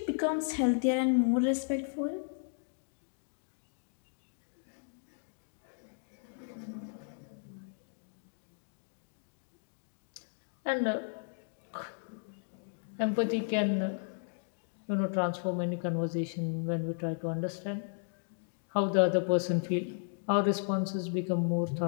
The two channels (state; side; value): silent; right; digital silence